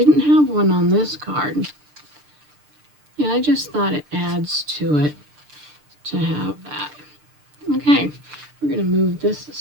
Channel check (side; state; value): left; late; 6.7 ms